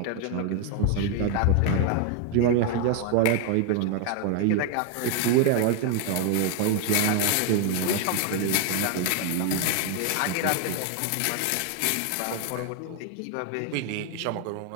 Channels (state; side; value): different; both; correlation 0.01